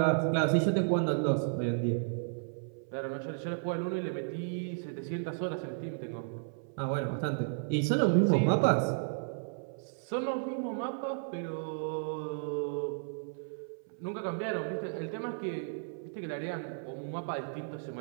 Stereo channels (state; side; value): silent; left; 55 dB below the other